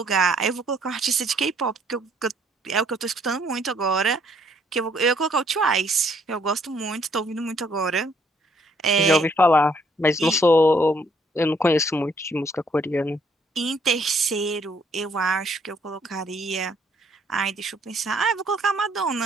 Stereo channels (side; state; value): both; normal; correlation 0.67